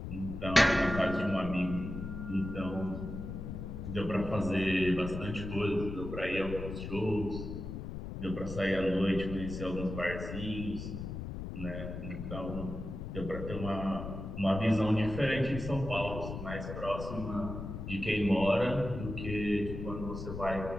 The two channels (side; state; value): left; noise; rumble, 7 dB below the sound